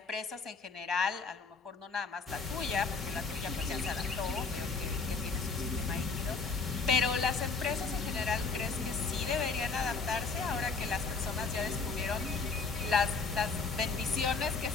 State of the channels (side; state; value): right; quieter; 4.7 dB